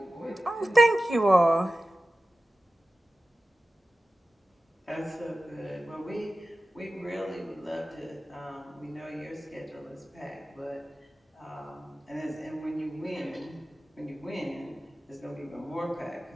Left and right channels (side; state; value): both; normal; correlation 0.95